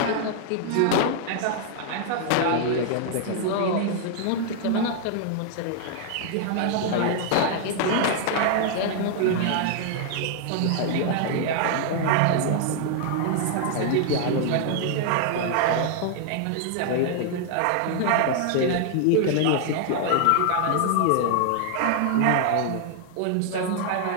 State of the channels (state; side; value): different; both; correlation 0.00